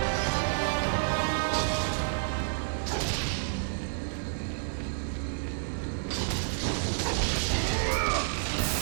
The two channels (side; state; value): left; silent; 58 dB below the other